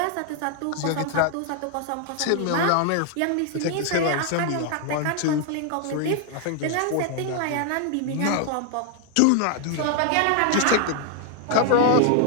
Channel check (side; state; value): both; different; correlation 0.00